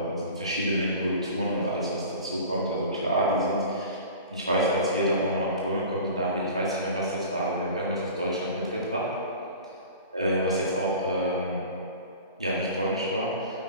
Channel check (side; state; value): both; inverted; correlation -0.38